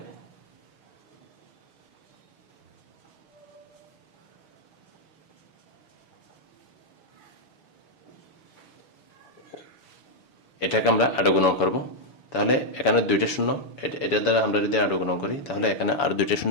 এটাকে আমরা আরো গুণন করব। তাহলে এখানে ২টা শূন্য, এটার দ্বারা আমরা যদি আরো গুণন করি তাহলে এখানে আরো ২টা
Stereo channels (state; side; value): late; right; 7.0 ms